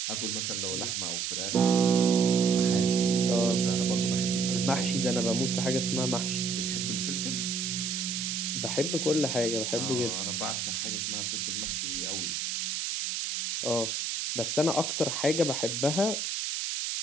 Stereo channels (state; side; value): noise; right; hiss, 2 dB below the sound